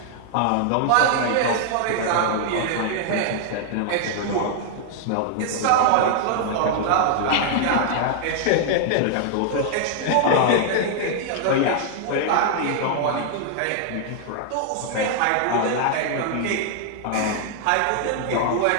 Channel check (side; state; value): both; different; correlation 0.00